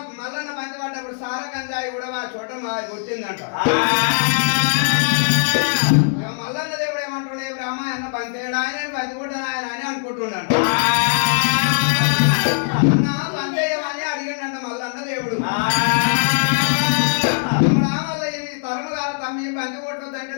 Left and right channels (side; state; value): right; silent; digital silence